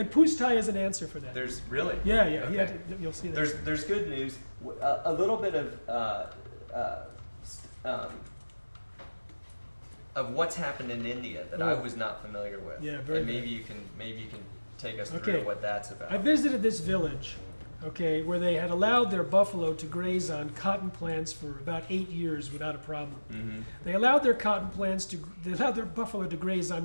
Pustai is an answer for that. There's really. Yeah. Okay. You'll see that. There's good news. A little bit of what's happened in India that I was not familiar with. Yeah, very. And maybe you can take us through what that's about. I visited this village. Where they had allowed their buffalo to graze on cotton plants for about 8 years without a problem. Mm-hmm. They allowed their buffalo to graze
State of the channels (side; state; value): both; inverted; correlation -1.00